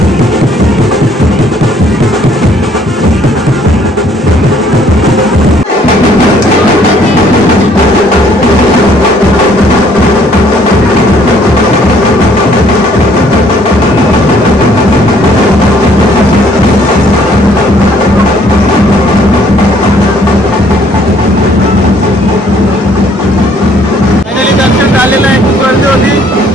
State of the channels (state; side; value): normal; both; correlation 0.62